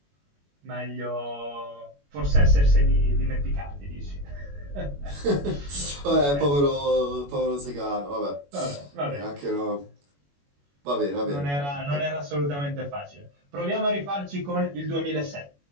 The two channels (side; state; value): left; late; 21 ms